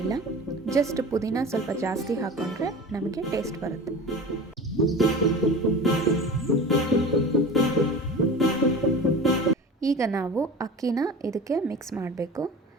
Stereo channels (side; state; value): both; normal; correlation 0.34